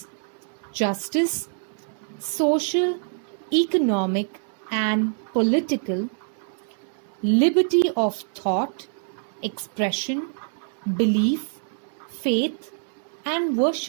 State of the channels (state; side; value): silent; left; 62 dB below the other